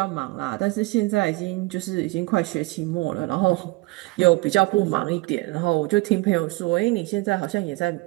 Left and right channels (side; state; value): left; quieter; 23.4 dB